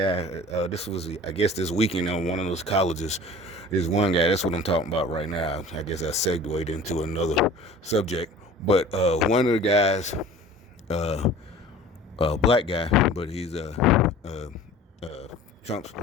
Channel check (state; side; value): normal; both; correlation 0.43